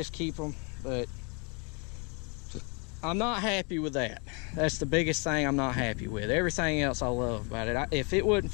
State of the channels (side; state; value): right; quieter; 33.9 dB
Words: keep them, but I'm not happy with that. That's the biggest thing I'm not happy with. Everything else I love about it. If it wasn't